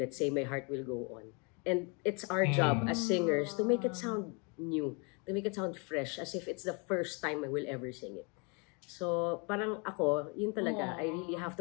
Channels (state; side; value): quieter; right; 33.1 dB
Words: let's say My Heart Will Go On. And it's our job as singers to make it sound new, to make it sound fresh, as if it's the first time I will ever sing it. So, parang ako, yun talaga, I really have